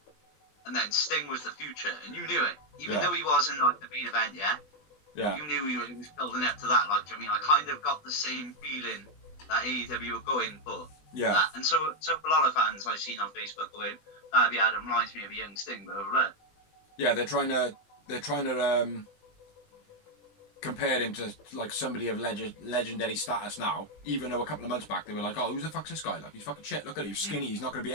and then Sting was the future, and you knew it. Even though he wasn't, like, the main event, yeah. You knew he was building up to that. Like, I mean, I kind of got the same feeling that AEW were going for. Yeah. That. And so for a lot of fans I've seen on Facebook going, Darby Allin reminds me of a young Sting, but over there. Yeah, they're trying to compare him to like somebody of legendary status now. Even though a couple of months back they were like, oh, who the fuck's this guy? Like, he's fucking shit. Look at him, he's skinny. He's not going to be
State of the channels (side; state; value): right; late; 20 ms